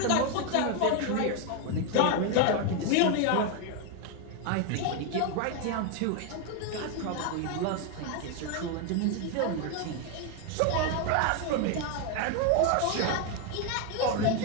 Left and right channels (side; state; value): both; different; correlation 0.01